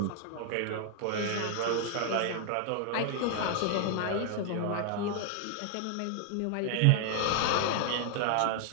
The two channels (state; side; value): different; both; correlation 0.00